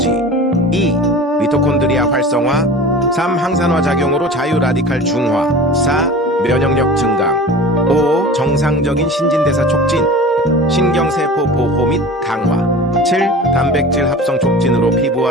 2. 미토콘드리아 활성화 3. 항산화 작용으로 자유 라디칼 중화 4. 면역력 증강 5. 정상적인 신진대사 촉진 신경세포 보호 및 강화 7. 단백질 합성 촉진으로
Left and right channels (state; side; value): normal; both; correlation 0.38